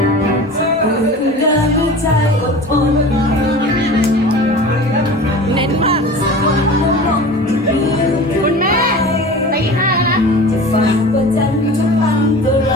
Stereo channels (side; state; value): both; normal; correlation 0.37